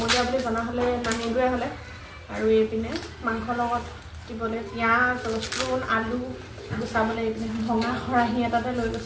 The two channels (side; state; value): both; identical; correlation 1.00